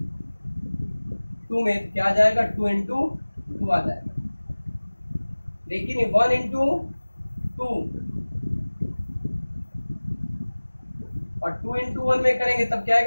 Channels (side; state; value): both; inverted; correlation -1.00